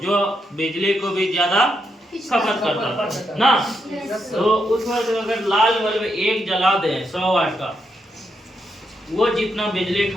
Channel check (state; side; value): normal; both; correlation 0.81